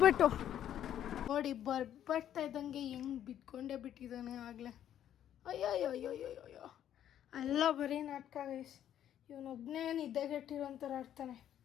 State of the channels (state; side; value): quieter; right; 10.7 dB